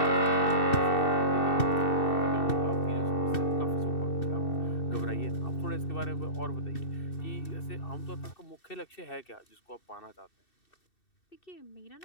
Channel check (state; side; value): late; right; 2.7 ms